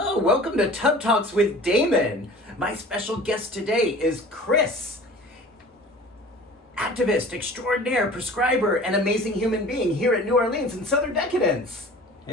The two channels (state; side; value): normal; both; correlation 0.43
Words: welcome to Tub Talks with Damon. My special guest today is Chris, activist, extraordinaire, prescriber, and amazing human being here at New Orleans in Southern Decadence.